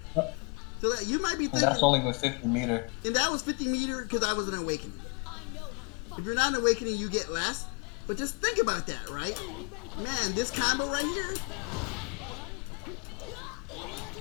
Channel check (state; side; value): quieter; right; 34.7 dB